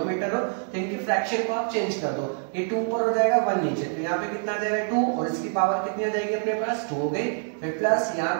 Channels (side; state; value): left; silent; 61 dB below the other